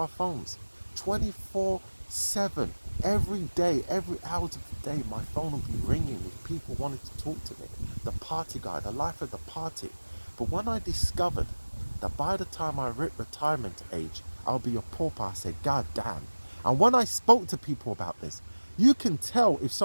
phones, 24/7. Every day, every hour of the day, my phone would be ringing with people wanting to talk to me. The party guy, the life of the party. But when I discovered that by the time I hit retirement age, I'll be a pauper, I said, God damn. And when I spoke to people about this, you can tell if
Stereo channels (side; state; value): both; inverted; correlation -1.00